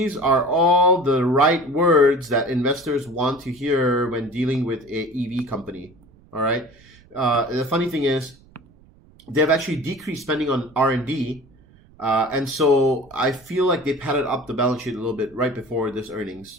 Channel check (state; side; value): noise; right; rumble, 27 dB below the sound